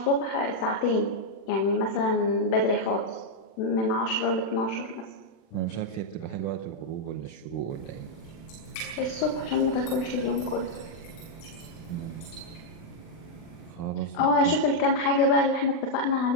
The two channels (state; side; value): late; right; 36 ms